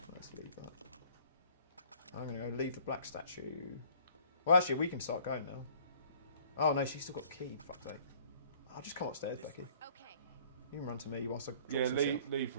Let's leave that. I'm going to go leave the black statue. Well, actually, we can start going now. Oh no, she's still got the key. Fuck's sake. I'll just come upstairs, Becky. Okay. You can run to me whilst I drop Yeah, some shit.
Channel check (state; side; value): inverted; both; correlation -0.55